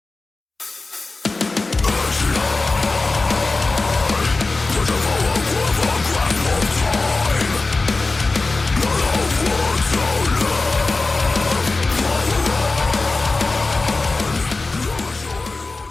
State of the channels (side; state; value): right; quieter; 3.5 dB